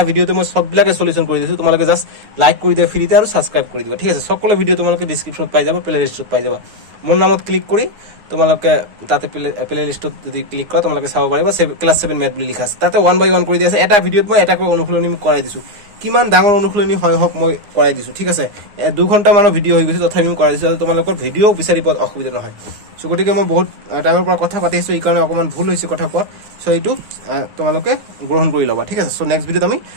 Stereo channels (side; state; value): left; late; 9.7 ms